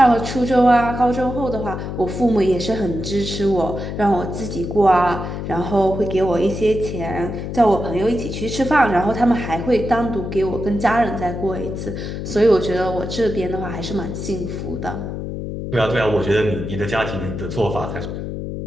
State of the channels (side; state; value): left; noise; hum, 6 dB below the sound